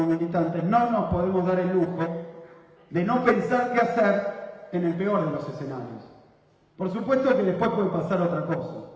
militantes no nos podemos dar el lujo de no pensar qué hacer en el peor de los escenarios. Por supuesto que después puede pasar otra cosa,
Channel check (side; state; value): both; identical; correlation 1.00